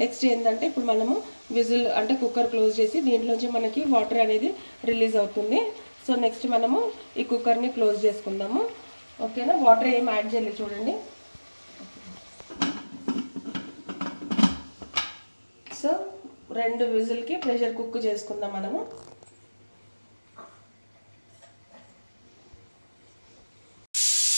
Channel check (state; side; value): inverted; both; correlation -1.00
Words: నెక్స్ట్ ఏంటంటే ఇప్పుడు మనము విజిల్ అంటే కుక్కర్ క్లోజ్ చేసి దీంట్లోంచి మనకి వాటర్ అనేది రిలీజ్ అవుతుంది. సో నెక్స్ట్ మనము ఈ కుక్కర్ని క్లోజ్ చేసుకుందాము. ఓకేనా, వాటర్ ఏం యాడ్ చేయలేదు చూడండి. సో 2 విజిల్కి ప్రెషర్ కుక్ చేసుకుందాం మనము.